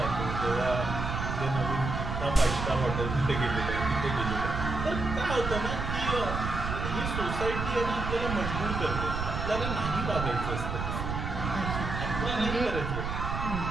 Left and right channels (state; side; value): noise; right; rumble, 3 dB below the sound